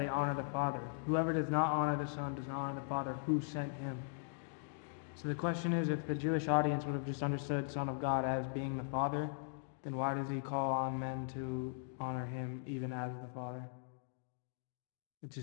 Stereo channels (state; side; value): silent; right; digital silence